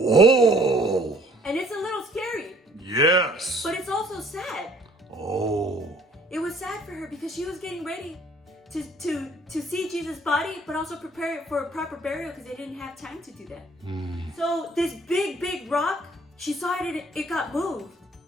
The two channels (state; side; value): normal; both; correlation 0.57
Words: And it's a little scary, Yes. but it's also sad. Oh. It was sad for her because she was getting ready to see Jesus' body, but also prepare it for a proper burial because they didn't have time to do that. So this big rock, she saw it got moved.